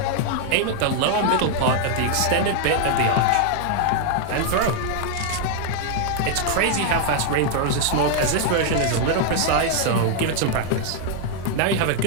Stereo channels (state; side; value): different; both; correlation 0.00